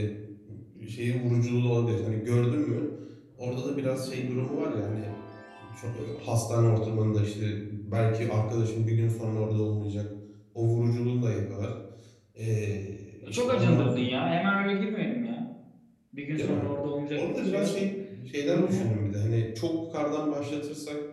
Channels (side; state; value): both; identical; correlation 1.00